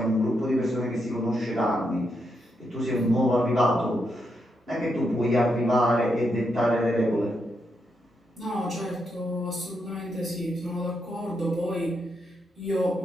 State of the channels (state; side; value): normal; both; correlation 0.81